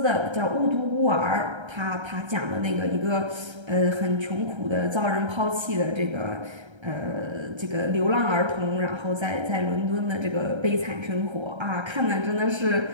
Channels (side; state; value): left; late; 1.3 ms